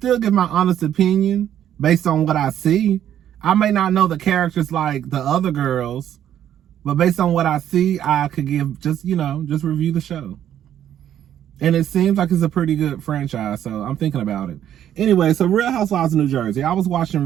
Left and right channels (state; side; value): quieter; left; 10.6 dB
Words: give my honest opinion based on what I see. I may not know the characters like the other girls, but based on what I see, I could give just review the show. And it seems like it's a pretty good franchise, so I'm thinking about it. Anyway, so Real Housewives of New Jersey. I was watching